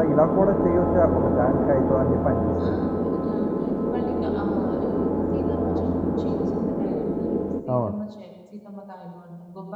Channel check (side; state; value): both; identical; correlation 1.00